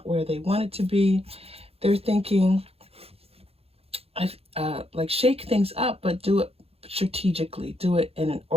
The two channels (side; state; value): left; late; 0.29 ms